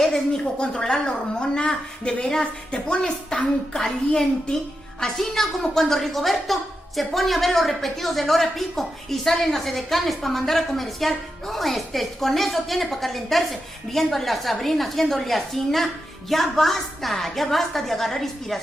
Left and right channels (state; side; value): normal; both; correlation 0.87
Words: mijo, controlar la hormona. De veras, te pones tan caliente. Así no como cuando Rigoberto se pone a ver los repetidos del hora pico y salen las edecanes para mandar a comercial. No, con eso tiene para calentarse. Viendo a la Sabrina haciéndole asina. Ya basta de agarrar